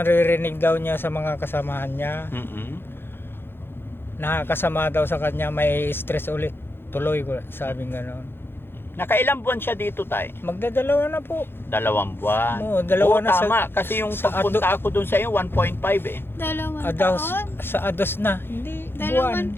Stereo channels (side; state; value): right; late; 0.10 ms